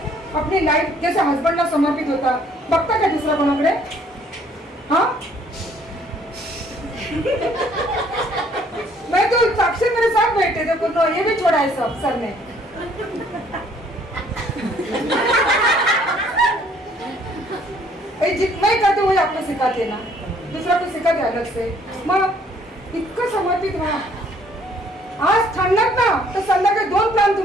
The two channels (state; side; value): normal; both; correlation 0.62